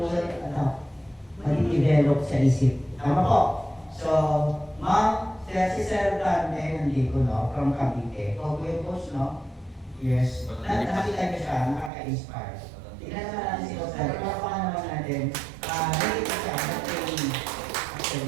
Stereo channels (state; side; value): drops out; left; at 11.9 s